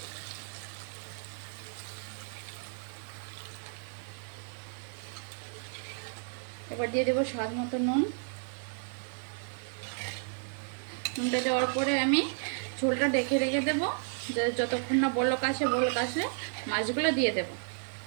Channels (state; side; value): silent; left; 55 dB below the other